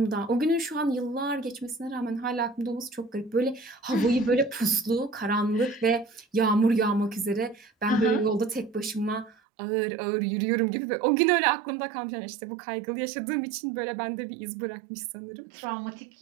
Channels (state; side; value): drops out; left; at 9.3 s